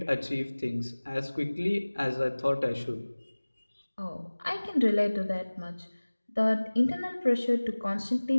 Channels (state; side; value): inverted; both; correlation -1.00